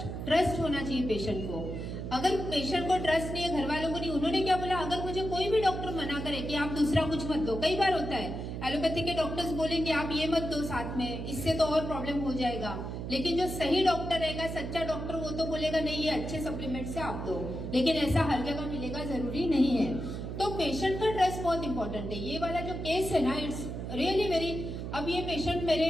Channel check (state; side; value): noise; right; hum, 6 dB below the sound